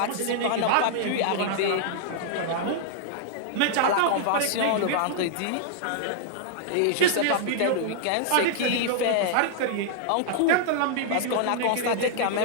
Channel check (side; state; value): both; different; correlation -0.01